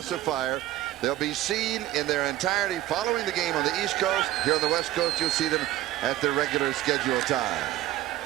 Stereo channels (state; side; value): quieter; left; 14.5 dB